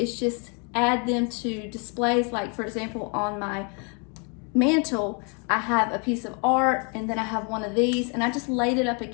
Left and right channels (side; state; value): right; quieter; 36.1 dB